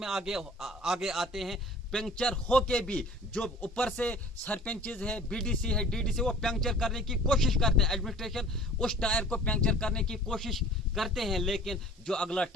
आगे आते हैं। पंक्चर होके भी जो ऊपर से सरपंचेस है, बीडीसी है, डीडीसी, वो पंक्चर करने की कोशिश करते हैं, एडमिनिस्ट्रेशन उस टायर को पंक्चर करने की कोशिश करते हैं, लेकिन जो अगला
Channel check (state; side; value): normal; both; correlation 0.47